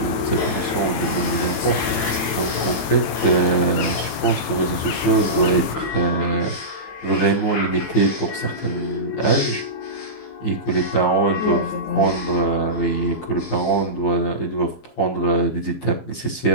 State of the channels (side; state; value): right; late; 15 ms